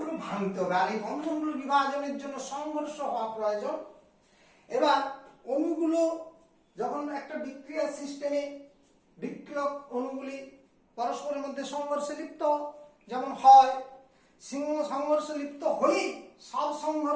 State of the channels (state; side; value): identical; both; correlation 1.00